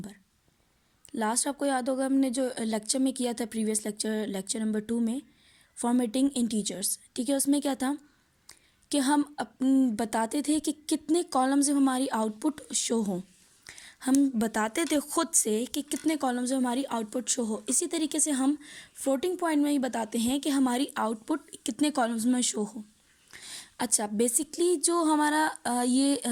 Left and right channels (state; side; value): identical; both; correlation 1.00